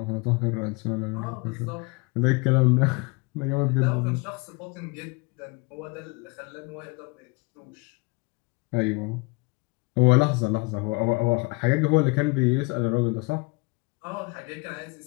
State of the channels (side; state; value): right; quieter; 27.7 dB